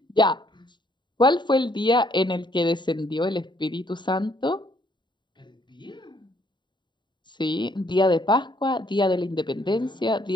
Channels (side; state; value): right; late; 0.22 ms